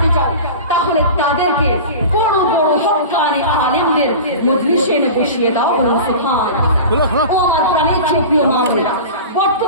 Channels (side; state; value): both; inverted; correlation -0.33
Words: চাও, তাহলে তাদেরকে বড় বড় হক্কানি আলেমদের মজলিসে এনে বসিয়ে দাও। বলুন সুবহানাল্লাহ। ও আমার প্রাণের প্রিয় মা বোনেরা,